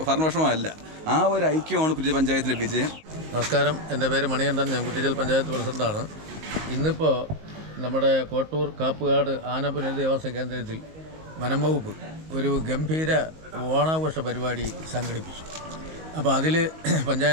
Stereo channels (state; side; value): late; left; 19 ms